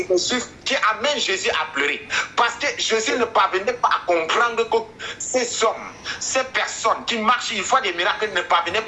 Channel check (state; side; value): identical; both; correlation 1.00